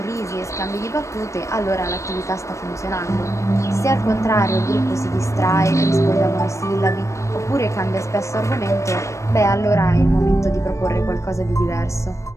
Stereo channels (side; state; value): right; late; 0.15 ms